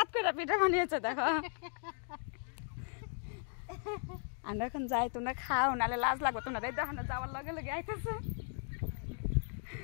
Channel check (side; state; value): right; silent; 53 dB below the other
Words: করে পিঠা বানিয়েছে, দেখো। আমরা এখন যাই, তোমরা খাও, নাহলে লাজ লাগবে তোমরা। দেখো আমরা যাওয়ার লগে লগে আইতেছে,